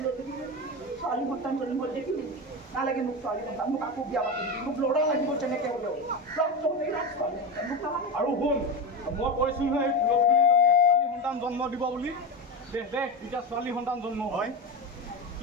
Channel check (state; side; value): normal; both; correlation 0.19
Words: দেখিছোঁ ছোৱালী সন্তান জন্ম দেখিলি নালাগে মোক ছোৱালী সন্তান মোক আকৌ বিয়া পাতি দিবি মোক ল'ৰা লাগিব তেনেকৈ হ'লেও আৰু শুন মই কৈছোঁ নহয় ছোৱালী সন্তান জন্ম দিব বুলি দেখ এতিয়া ছোৱালী সন্তান জন্ম হয়।